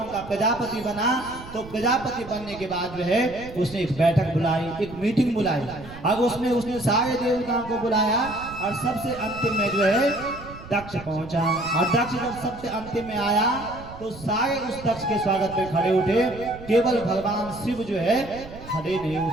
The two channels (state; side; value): noise; right; rumble, 15 dB below the sound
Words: का प्रजापति बना, तो प्रजापति बनने के बाद जो है उसने एक बैठक बुलाई, एक मीटिंग बुलाई, और उसमें उसने सारे देवताओं को बुलाया, और सबसे अंतिम में जो है दक्ष पहुंचा। और दक्ष जब सबसे अंतिम में आया तो सारे उस दक्ष के स्वागत में खड़े उठे, केवल भगवान शिव जो है खड़े नहीं